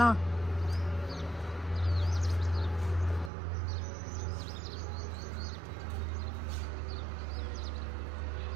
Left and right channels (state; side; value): drops out; left; at 3.3 s